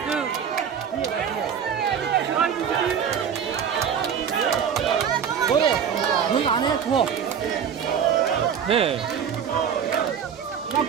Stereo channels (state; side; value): quieter; left; 7.8 dB